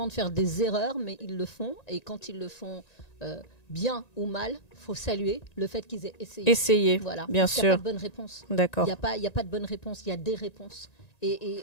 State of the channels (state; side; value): late; right; 1.9 ms